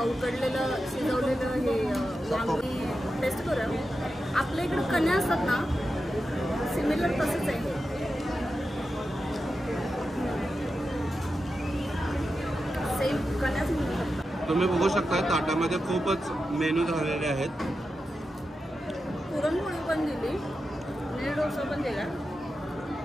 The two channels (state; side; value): normal; both; correlation 0.90